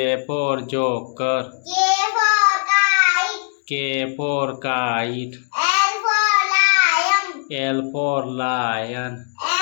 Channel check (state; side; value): silent; right; digital silence